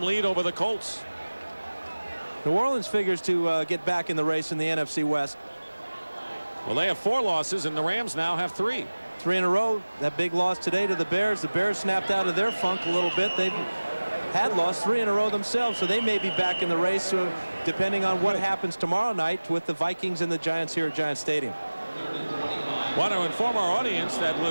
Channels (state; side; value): inverted; both; correlation -1.00